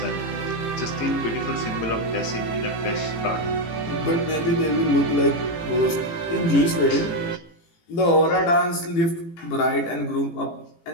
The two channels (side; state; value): right; late; 18 ms